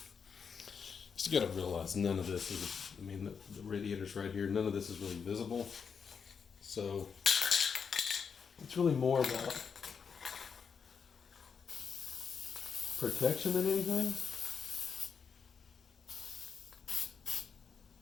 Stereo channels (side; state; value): right; quieter; 6.3 dB